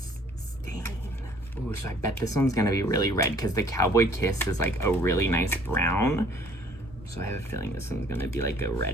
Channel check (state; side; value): normal; both; correlation 0.58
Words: stain. Ooh, so I bet this one's gonna be really red because the Cowboy Kiss is like a really nice brown. So I have a feeling this one's gonna be like a